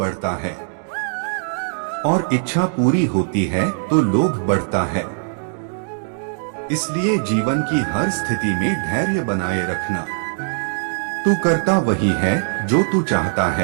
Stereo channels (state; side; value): silent; left; digital silence